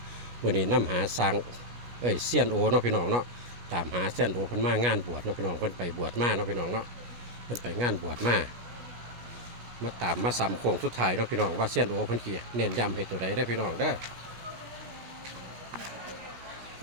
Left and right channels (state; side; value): late; left; 17 ms